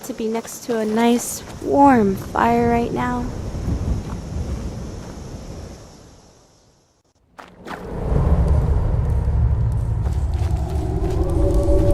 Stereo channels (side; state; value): both; identical; correlation 1.00